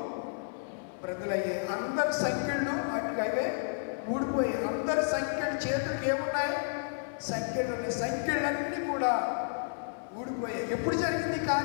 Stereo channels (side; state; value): right; silent; 57 dB below the other